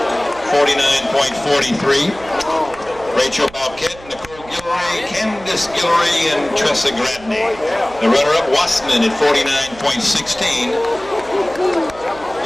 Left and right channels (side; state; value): right; noise; hum, 20 dB below the sound